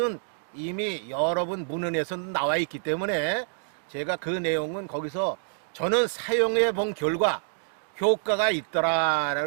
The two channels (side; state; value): left; silent; digital silence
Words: 이미 여러 번 문헌에서 나와 있기 때문에 제가 그 내용은 거기서 저는 사용해 본 결과 효과가